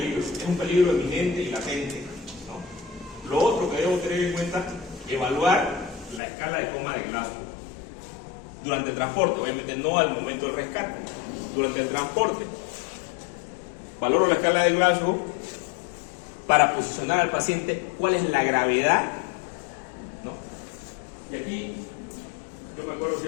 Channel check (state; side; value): drops out; right; at 6.2 s